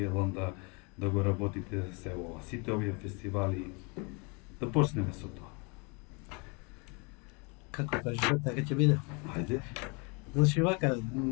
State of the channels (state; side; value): quieter; right; 31.9 dB